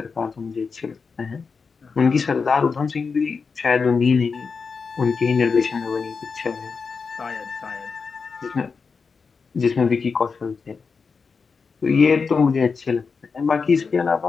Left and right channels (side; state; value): right; quieter; 5.1 dB